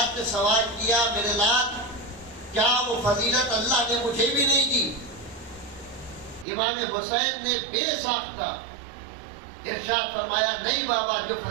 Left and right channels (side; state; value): left; drops out; at 6.5 s